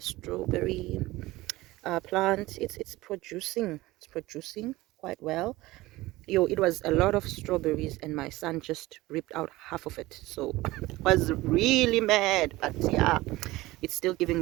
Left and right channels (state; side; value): quieter; left; 18.8 dB